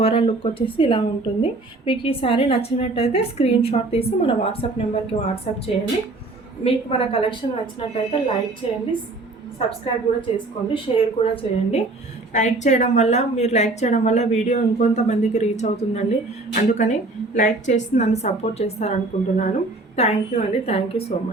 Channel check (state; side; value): quieter; left; 3.1 dB